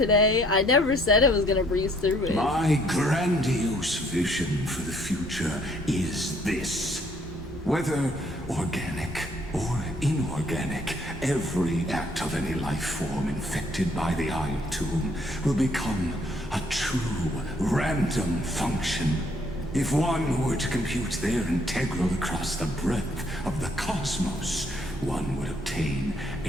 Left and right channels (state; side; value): noise; left; hum, 23 dB below the sound